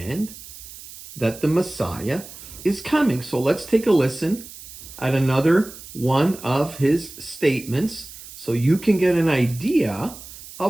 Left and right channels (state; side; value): noise; right; hiss, 16 dB below the sound